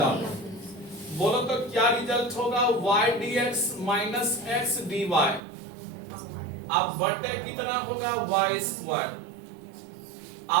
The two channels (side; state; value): left; drops out; at 5.4 s